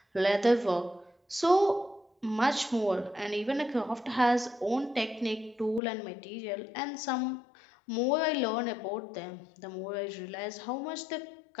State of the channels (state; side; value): drops out; right; at 5.8 s